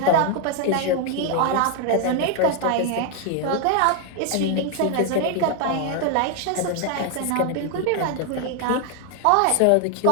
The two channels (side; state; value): both; different; correlation 0.01